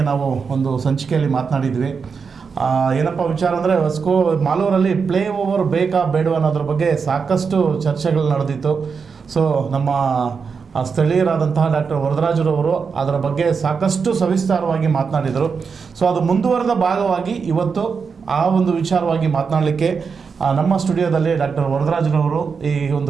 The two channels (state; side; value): quieter; left; 5.6 dB